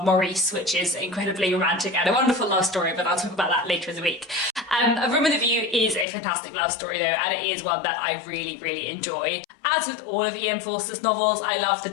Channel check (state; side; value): drops out; right; at 6.1 s